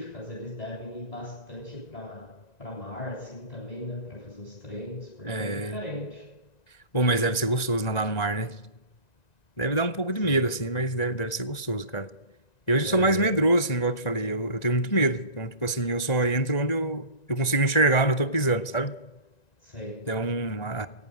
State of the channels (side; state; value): right; late; 1.9 ms